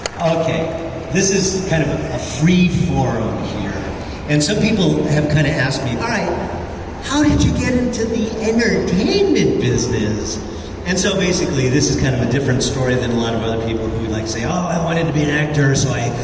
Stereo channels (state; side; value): identical; both; correlation 1.00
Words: Okay, this is kind of a free forum here. And some people have kind of asked me, all right, how did you get into the entertainment business? And so basically, this is kind of a different story than a lot of other people who like say, oh, I wanted to be an actor, so I